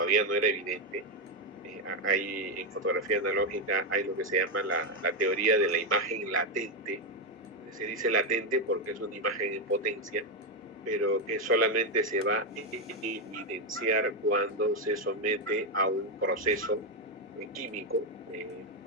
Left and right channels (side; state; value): both; normal; correlation 0.06